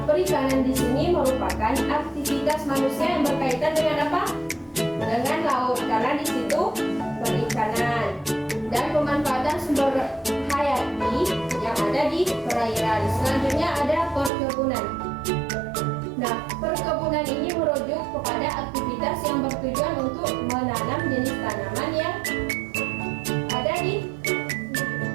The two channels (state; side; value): drops out; left; at 14.3 s